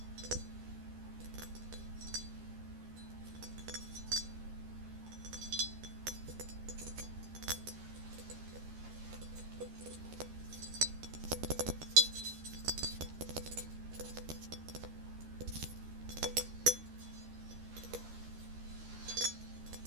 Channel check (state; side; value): late; left; 13 ms